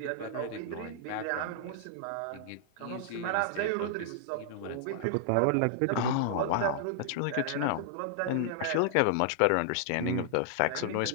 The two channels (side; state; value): both; different; correlation -0.01